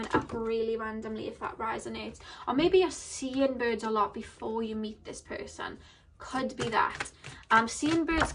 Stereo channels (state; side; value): identical; both; correlation 1.00